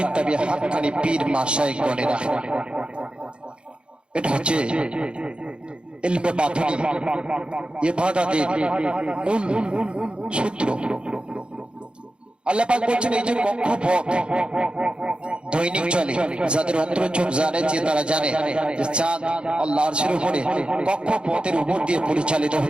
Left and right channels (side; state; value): left; late; 0.055 ms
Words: তাবিঈ হাক্কানি পীর মাশায়েখ গণেরা। এটা হচ্ছে ইলমে বাতিনি, ইবাদতের মূল সূত্র। আল্লাহ পাক বলছেন এই যে কক্ষপথ দৈনিক চলে, যাদের অন্তর চোখ জানে, যে তারা জানে যে চাঁদ আল্লাহর আরশের উপরে কক্ষপথের উপর দিয়ে পরিচালিত